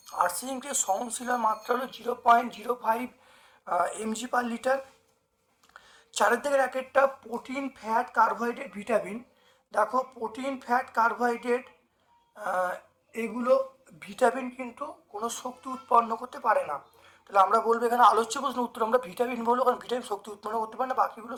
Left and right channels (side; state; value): both; identical; correlation 1.00